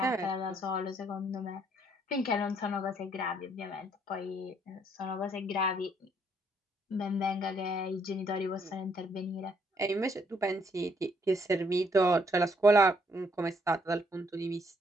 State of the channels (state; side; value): normal; both; correlation 0.69